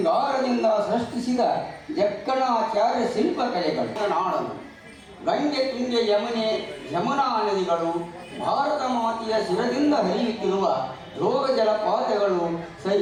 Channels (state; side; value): identical; both; correlation 1.00